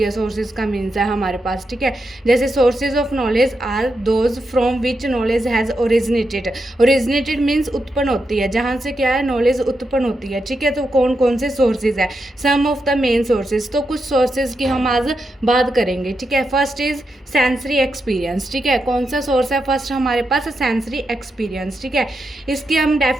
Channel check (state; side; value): normal; both; correlation 0.85